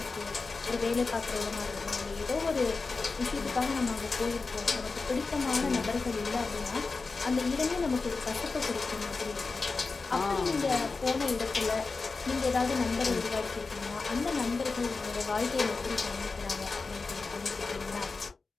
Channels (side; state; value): right; quieter; 4.2 dB